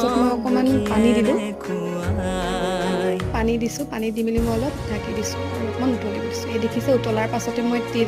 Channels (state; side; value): identical; both; correlation 1.00